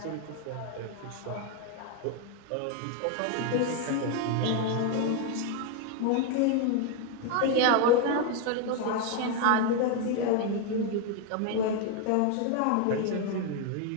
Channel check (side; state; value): both; different; correlation 0.01